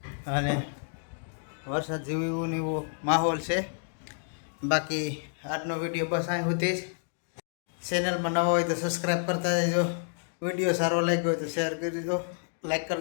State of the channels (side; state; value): right; silent; digital silence